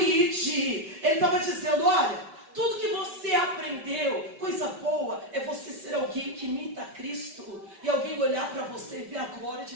Ele estava dizendo, olha, tudo que você aprendeu, coisa boa, é você ser alguém que imita Cristo. E alguém olhar para você e ver a glória de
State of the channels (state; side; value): late; left; 5.2 ms